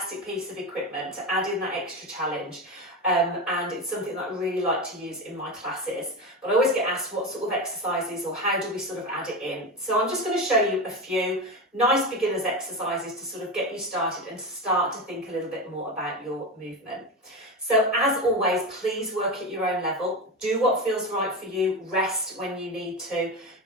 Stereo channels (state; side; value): normal; both; correlation 0.19